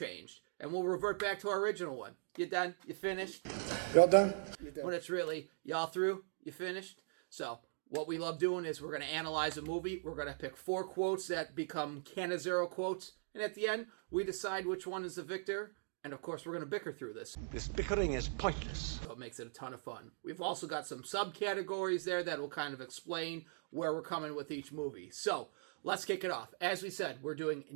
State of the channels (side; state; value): left; silent; digital silence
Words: And we'll revert back to our original one. You done? You finished? Y'all done? When it's really, y'all through? You finished? So, what we love doing is we're going to analyze a movie. We're going to pick 4 quotes that become Canizero quotes. And at the end, we decide which one is the victor. And of course, we're going to bicker through this. This bickering is pointless. So it makes it a ton of fun. We've also got some subcategories there that will kind of explain where we're coming with each movie. So, let's kick it off. As we said, we're doing